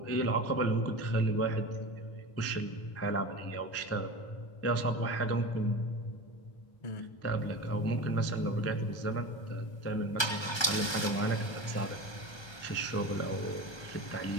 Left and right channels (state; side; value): late; right; 1.3 ms